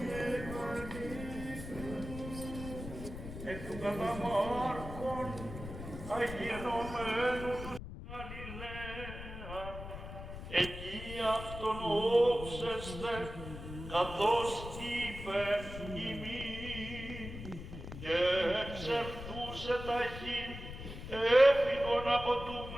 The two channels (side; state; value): left; noise; rumble, 10 dB below the sound